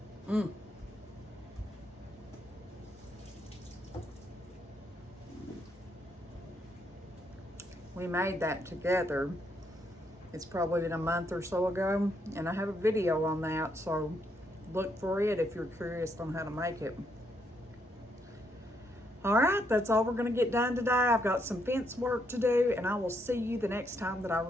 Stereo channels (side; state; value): both; normal; correlation 0.75